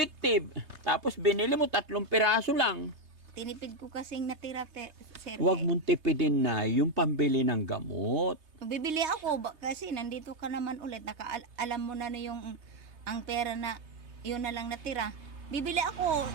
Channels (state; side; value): late; left; 3.3 ms